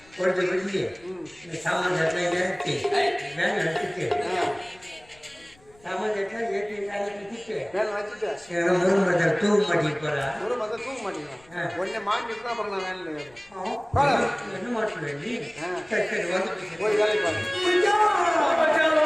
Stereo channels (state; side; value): noise; left; rumble, 28 dB below the sound